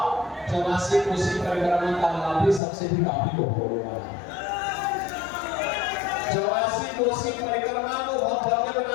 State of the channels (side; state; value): right; drops out; at 2.6 s